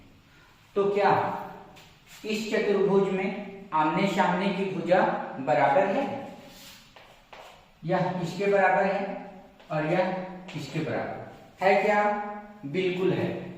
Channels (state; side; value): identical; both; correlation 1.00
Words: तो क्या इस चतुर्भुज में आमने सामने की भुजा बराबर है? यह इसके बराबर है और यह इसके बराबर है क्या? बिल्कुल है।